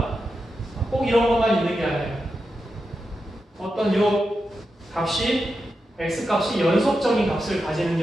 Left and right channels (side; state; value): both; normal; correlation 0.89